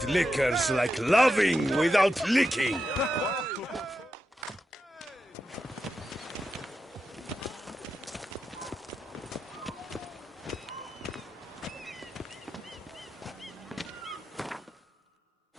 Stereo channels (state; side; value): normal; both; correlation 0.88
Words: liquor's like loving without licking.